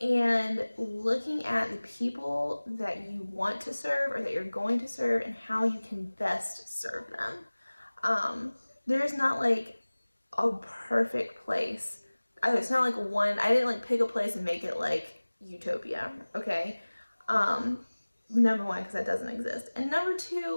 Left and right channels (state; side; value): inverted; both; correlation -1.00